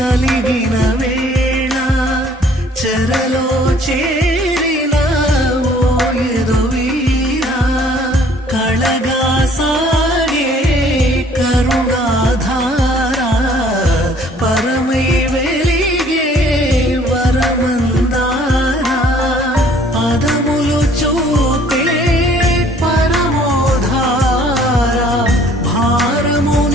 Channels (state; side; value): normal; both; correlation 0.57